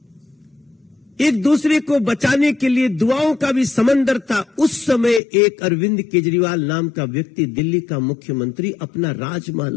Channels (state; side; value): drops out; right; at 5.2 s